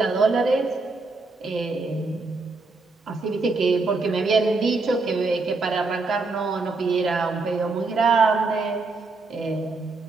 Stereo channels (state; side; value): quieter; left; 3.7 dB